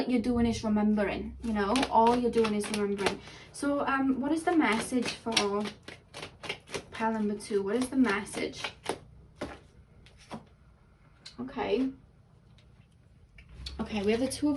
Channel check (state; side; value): identical; both; correlation 1.00